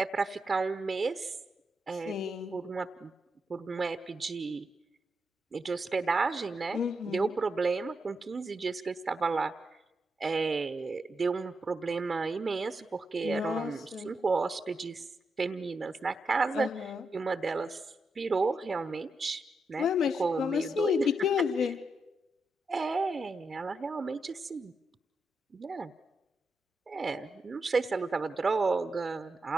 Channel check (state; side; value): normal; both; correlation 0.84